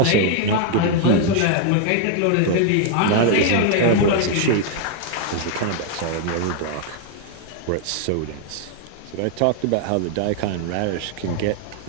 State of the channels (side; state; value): both; different; correlation 0.00